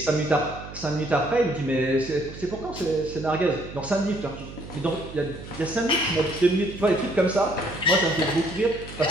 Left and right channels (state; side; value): noise; right; hum, 13 dB below the sound